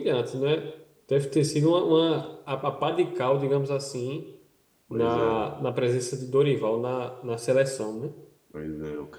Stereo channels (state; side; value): identical; both; correlation 1.00